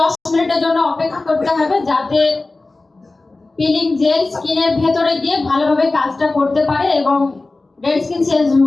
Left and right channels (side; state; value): right; quieter; 3.3 dB